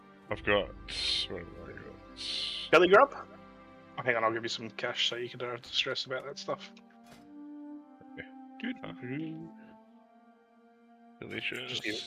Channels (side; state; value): both; identical; correlation 1.00